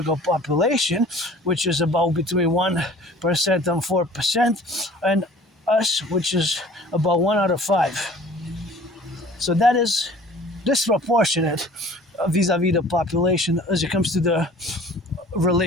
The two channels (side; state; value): both; normal; correlation 0.48